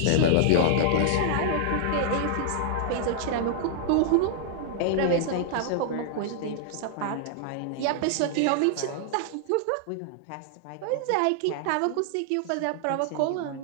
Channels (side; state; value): both; different; correlation -0.01